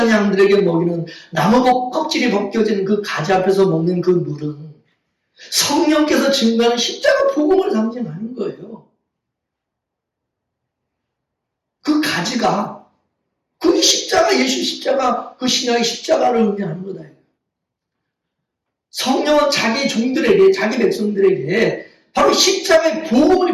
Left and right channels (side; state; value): both; identical; correlation 1.00